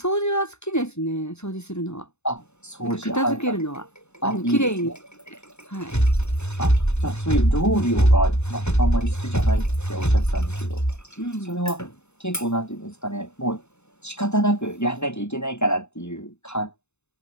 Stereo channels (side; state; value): right; late; 0.81 ms